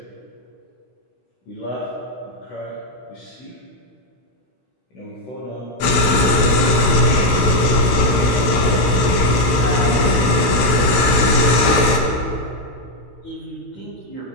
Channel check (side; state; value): right; late; 16 ms